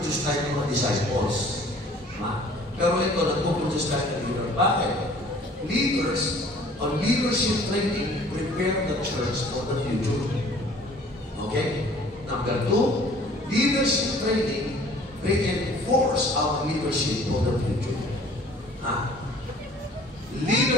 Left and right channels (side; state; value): both; normal; correlation 0.52